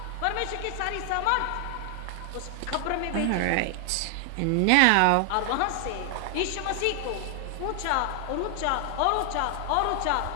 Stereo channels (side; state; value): both; different; correlation 0.00